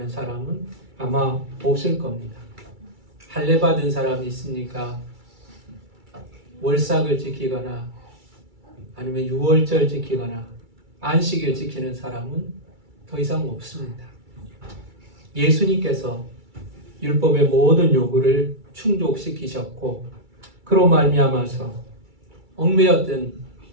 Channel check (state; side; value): late; left; 2.3 ms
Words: 사람은 아마 없을 겁니다. 할례 받은 사람이 있습니까? 월삭을 지키거나 아니면 유월절 지키거나 안식일 지키는 사람은 더 이상 없습니다. 예수님께서 율법의 모든 요구를 충족시키셨고 그로 말미암아서 얽매였던